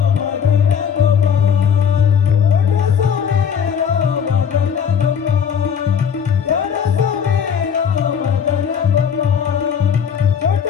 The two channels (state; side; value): quieter; right; 7.5 dB